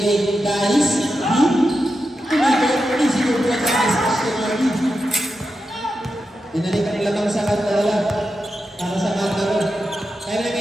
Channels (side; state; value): both; normal; correlation 0.89